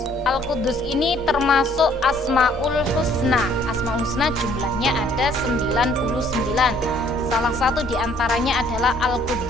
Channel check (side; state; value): both; normal; correlation 0.61